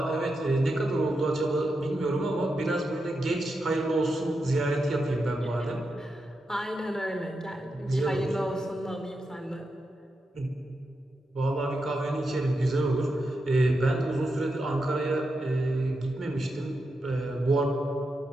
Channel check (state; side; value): normal; both; correlation 0.87